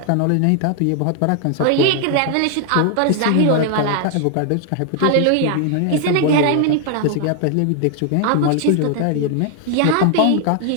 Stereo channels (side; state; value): both; different; correlation 0.00